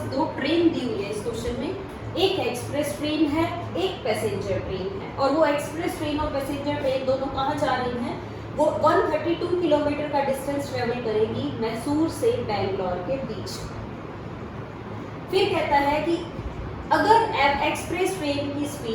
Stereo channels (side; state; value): both; identical; correlation 1.00